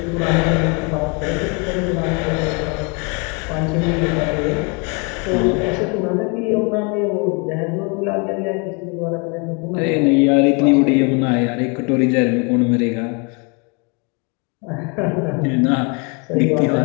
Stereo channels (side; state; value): right; quieter; 32.5 dB